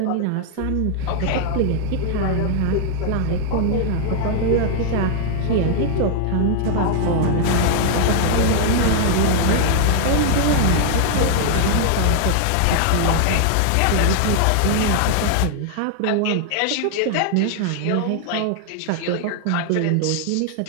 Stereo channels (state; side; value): different; both; correlation -0.01